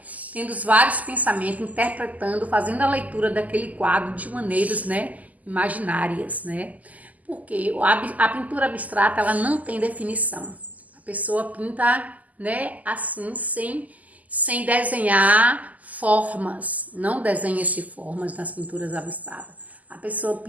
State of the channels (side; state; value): left; late; 0.077 ms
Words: Tendo vários pensamentos, interpretando, fazendo a leitura daquele quadro de maneiras, né? Imaginárias, né? Porque a pintura abstrata, ela não tem definição. A pessoa pinta, né? Assim, sem desenhar formas. Não desenha-se formas nas pinturas abstratas. A pessoa